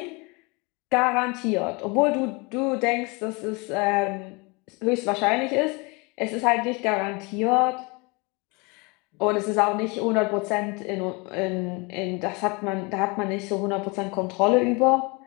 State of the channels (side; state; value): right; quieter; 28.8 dB